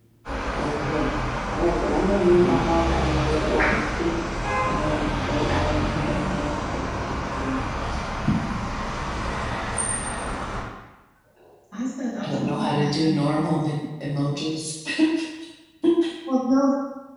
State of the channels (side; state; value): both; identical; correlation 1.00